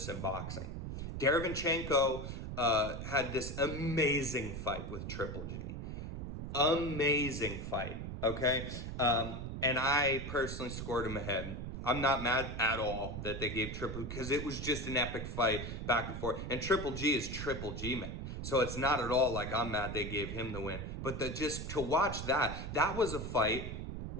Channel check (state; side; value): noise; right; rumble, 6 dB below the sound